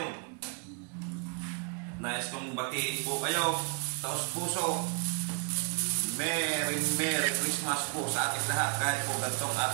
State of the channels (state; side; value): quieter; left; 35.7 dB